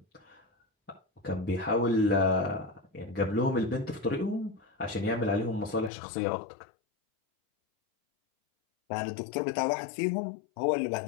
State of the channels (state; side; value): drops out; right; at 5.9 s